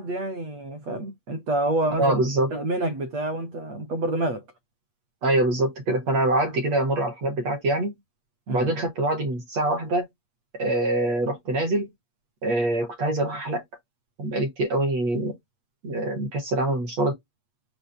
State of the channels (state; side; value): late; left; 8.4 ms